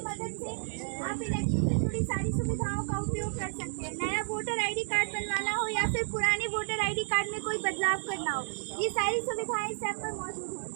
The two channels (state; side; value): silent; left; 57 dB below the other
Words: मदद से आप इलेक्शन से जुड़ी सारी सुविधाओं का उपयोग कर सकते हैं। नया वोटर आईडी कार्ड बनवाना हो या फिर पुराने वोटर आईडी कार्ड में कोई बदलाव करना हो, ये सारी सुविधाएं इस ऐप पर मौजूद हैं।